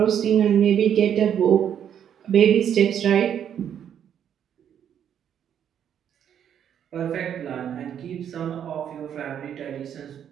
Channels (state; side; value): quieter; left; 9.1 dB